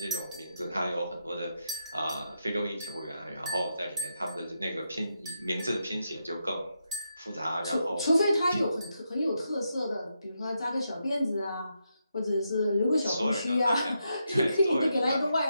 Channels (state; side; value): inverted; both; correlation -0.83